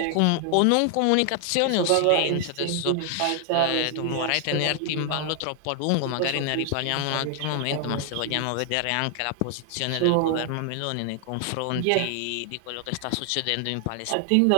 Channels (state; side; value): different; both; correlation 0.00